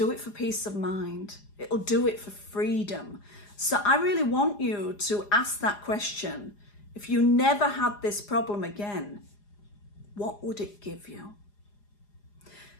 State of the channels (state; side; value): late; right; 4.9 ms